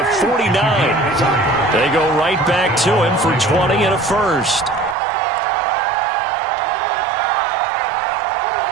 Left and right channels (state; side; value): drops out; left; at 5.0 s